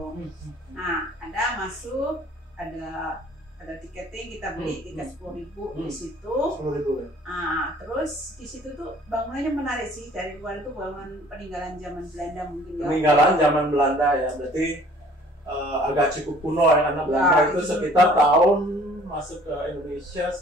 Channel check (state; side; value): normal; both; correlation 0.53